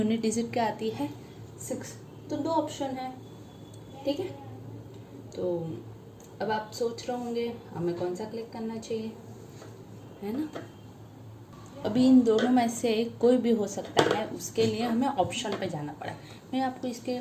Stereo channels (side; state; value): both; identical; correlation 1.00